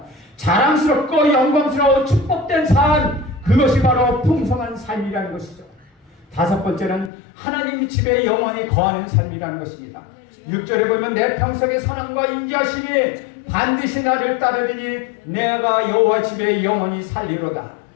자랑스럽고 영광스러운 축복된 삶, 그것이 바로 풍성한 삶이라는 것이죠. 다섯 번째는 하나님 집에 영원히 거하는 삶이라는 것입니다. 6절에 보면 내 평생의 사랑과 인자심이 반드시 나를 따르리니 내가 여호와 집에 영원히 살리로다.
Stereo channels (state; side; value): drops out; right; at 7.1 s